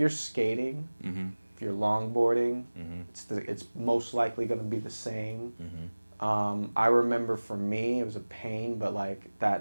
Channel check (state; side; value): inverted; both; correlation -1.00